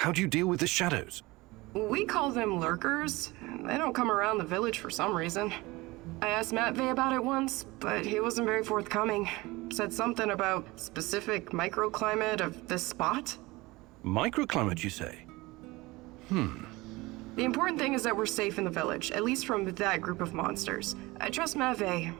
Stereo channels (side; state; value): left; quieter; 21.6 dB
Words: do you deal with the shadows? We call them lurkers. They don't come around the village for some reason. I asked Matvey about it once, but he wasn't very forthcoming. Said something about specific microclimate of this spot. Microclimate, you say? The important thing is that we're safe in the village, at least from that group of monsters. I trust Matvey.